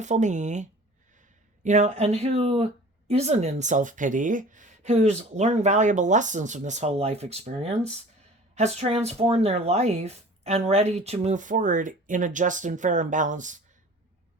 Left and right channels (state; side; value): normal; both; correlation 0.44